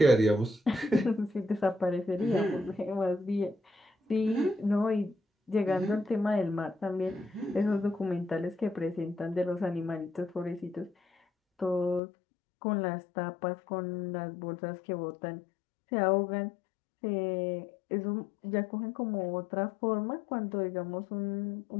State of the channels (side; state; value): right; drops out; at 12.0 s